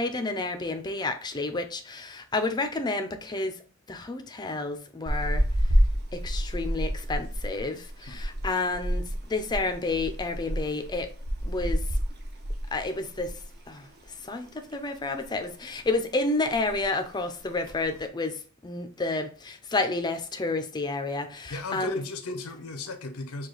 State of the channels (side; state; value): both; normal; correlation 0.51